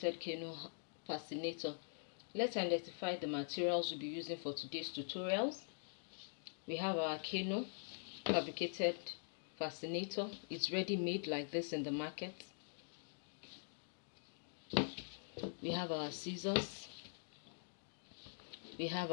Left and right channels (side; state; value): right; silent; digital silence